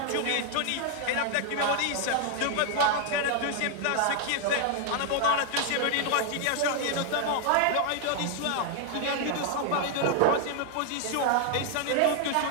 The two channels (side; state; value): both; different; correlation 0.00